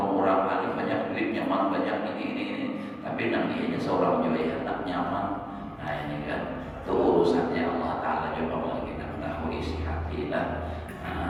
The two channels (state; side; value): identical; both; correlation 1.00